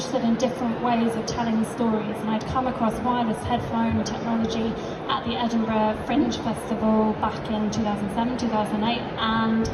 in different ways of telling stories, and I'd come across wireless headphone technology at the Edinburgh Fringe Festival back in 2007, 2008, and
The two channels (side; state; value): both; identical; correlation 1.00